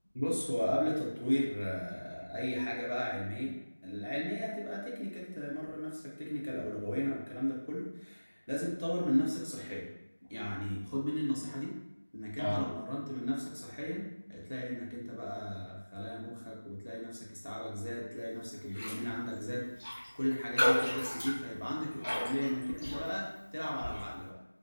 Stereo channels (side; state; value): both; inverted; correlation -1.00